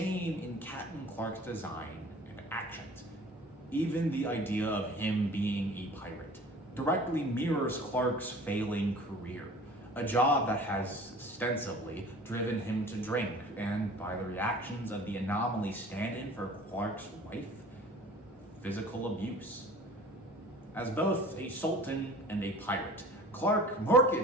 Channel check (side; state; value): both; normal; correlation 0.45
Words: in Captain Clark's design and actions. Even the idea of him being a pirate directly mirrors Clark's failing career, a job that has ostensibly driven him to drink, and by the reactions of the anomaly stand-in for Clark's wife, physical abuse. As both a sultan and a pirate, Clark